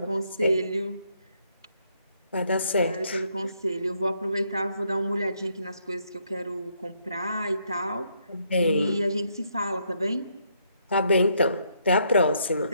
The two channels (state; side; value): inverted; both; correlation -0.73